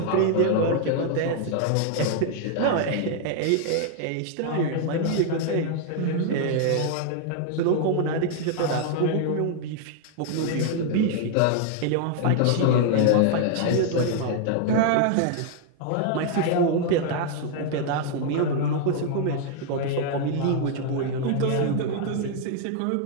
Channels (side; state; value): both; different; correlation 0.00